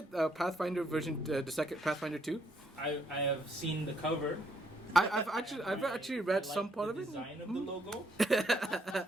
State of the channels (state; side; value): normal; both; correlation 0.71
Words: Pathfinder version the second Pathfinder 2? I have seen the cover. I've actually read I like some part the of it. Hmm? design of the logo.